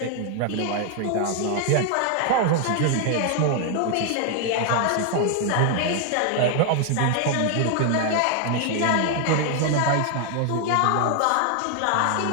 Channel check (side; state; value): both; different; correlation 0.00